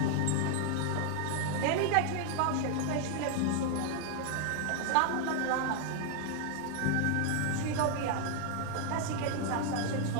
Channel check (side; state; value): both; different; correlation 0.00